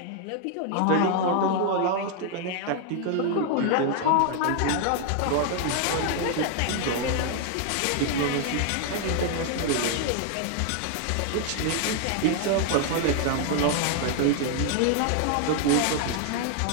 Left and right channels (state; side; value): different; both; correlation 0.00